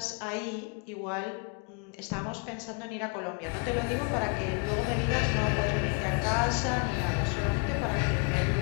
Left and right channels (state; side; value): quieter; right; 33.4 dB